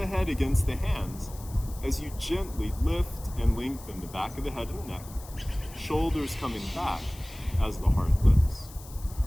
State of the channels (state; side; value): noise; left; hiss, 19 dB below the sound